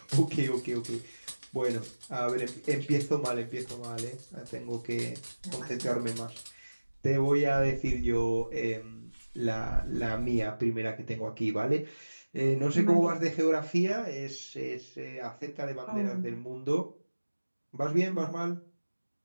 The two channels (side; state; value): both; inverted; correlation -1.00